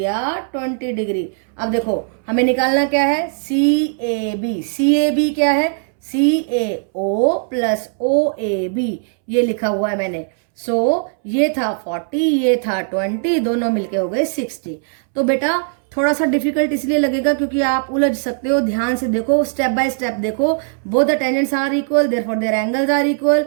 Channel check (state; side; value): silent; left; 66 dB below the other